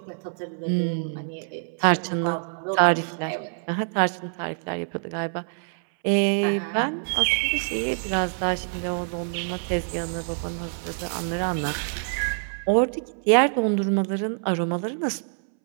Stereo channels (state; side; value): silent; left; 61 dB below the other